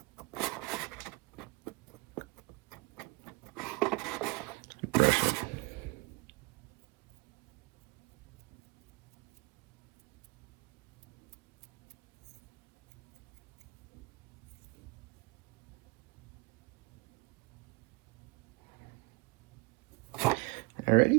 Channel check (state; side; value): quieter; left; 24.9 dB